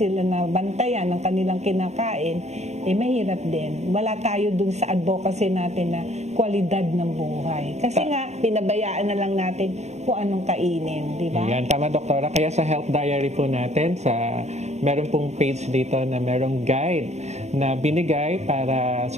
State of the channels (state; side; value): late; left; 0.32 ms